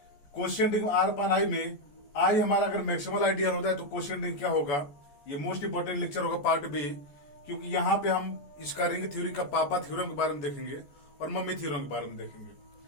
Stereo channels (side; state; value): right; late; 14 ms